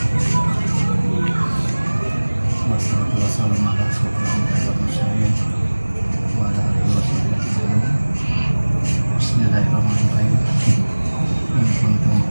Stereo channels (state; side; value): inverted; both; correlation -1.00